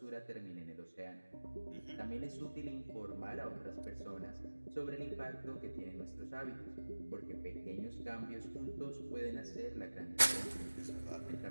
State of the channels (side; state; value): both; inverted; correlation -1.00